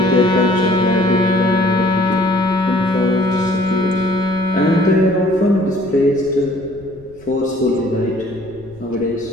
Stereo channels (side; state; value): left; noise; rumble, 24 dB below the sound